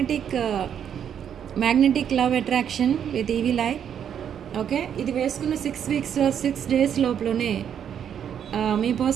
love attraction with evil eye. Okay, ఇది వేసుకున్న 6 weeks, 6 days లోపలనే మీ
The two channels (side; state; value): left; quieter; 8.7 dB